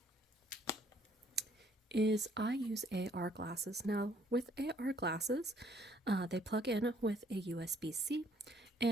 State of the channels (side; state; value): both; normal; correlation 0.64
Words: is I use AR glasses. Now, with AR glasses, they plug in with a USB-C,